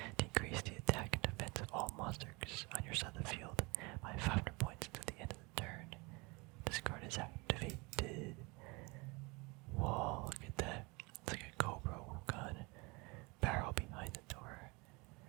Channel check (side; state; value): left; quieter; 26.8 dB